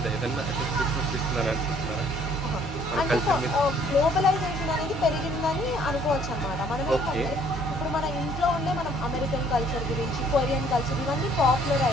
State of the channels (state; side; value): noise; right; hum, 9 dB below the sound